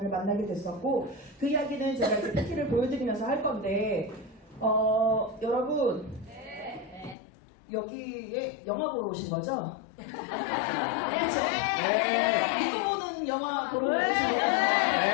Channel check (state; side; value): drops out; right; at 7.2 s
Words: 만나게 됐었고 그 이야기는 제가 이제 PT를 보여드리면서 할 건데 여러분 여기에 영화 보러 오신 거죠? 그렇죠? 이거 보는 영화 보러 오신